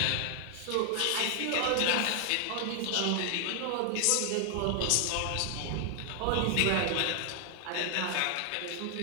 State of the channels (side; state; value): both; different; correlation 0.00